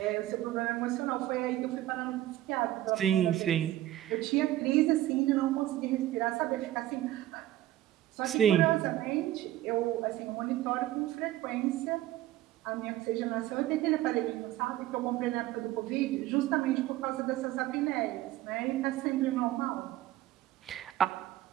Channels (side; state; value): left; quieter; 14.5 dB